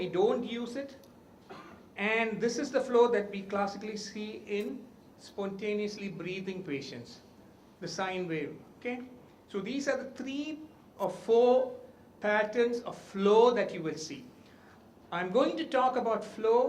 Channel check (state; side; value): identical; both; correlation 1.00